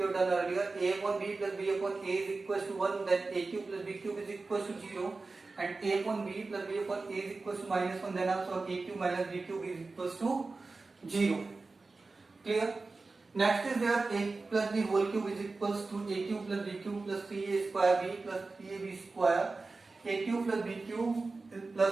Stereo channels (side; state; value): left; quieter; 3.7 dB